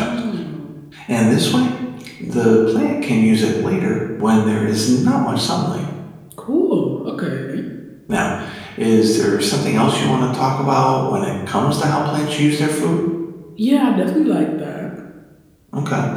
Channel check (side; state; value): both; identical; correlation 1.00